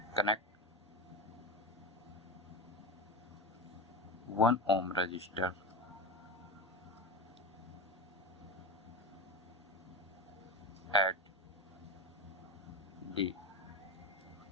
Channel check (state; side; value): normal; both; correlation 0.22